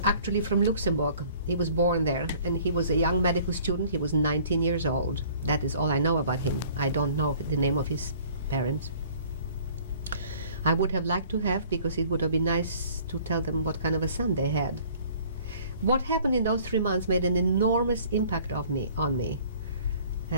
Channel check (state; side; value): inverted; both; correlation -0.54